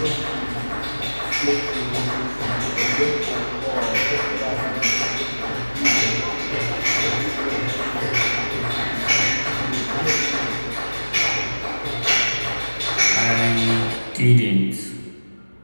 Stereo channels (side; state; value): both; inverted; correlation -1.00